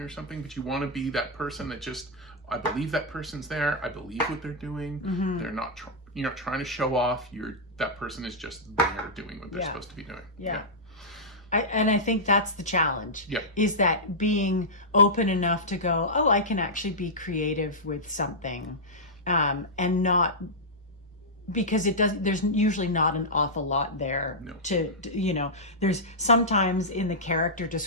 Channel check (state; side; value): normal; both; correlation -0.10